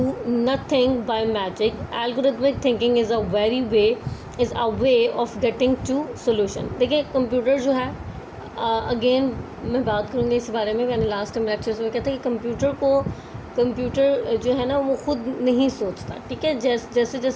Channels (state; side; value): identical; both; correlation 1.00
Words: nothing by magic. Algorithmic thinking is a way of getting to solution. देखिए कंप्यूटर जो है, अगेन मैं बात करूँगी इस बारे में. मैंने लास्ट टाइम लेक्चर्स में कहता है कि कंप्यूटर जो है ना वो खुद नहीं सोचता. ठीक है, जैसे